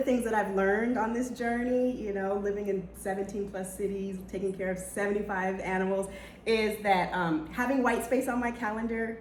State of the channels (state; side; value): identical; both; correlation 1.00